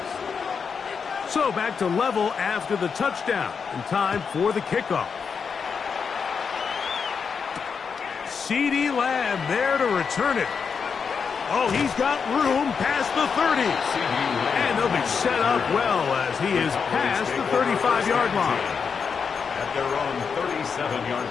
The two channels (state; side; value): quieter; right; 6.0 dB